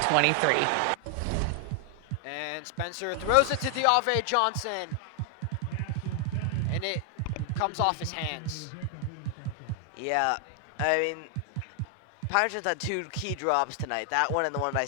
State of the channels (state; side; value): different; both; correlation 0.00